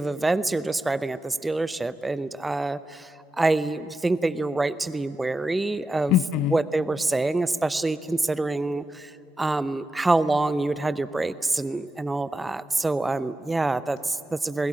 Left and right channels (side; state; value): both; normal; correlation 0.89